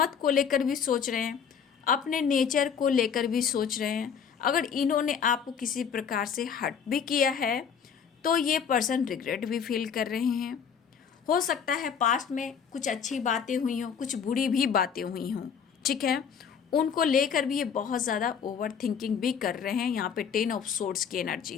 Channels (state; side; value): quieter; right; 7.1 dB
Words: को लेकर भी सोच रहे हैं, अपने नेचर को लेकर भी सोच रहे हैं। अगर इन्होंने आपको किसी प्रकार से हर्ट भी किया है, तो ये पर्सन रिग्रेट भी फील कर रहे हैं। हो सकता है पास्ट में कुछ अच्छी बातें हुई हों, कुछ बुरी भी बातें हुई हों। ठीक है, उनको लेकर भी ये बहुत ज़्यादा ओवर थिंकिंग भी कर रहे हैं। यहाँ पे 10 ऑफ सोर्ड्स की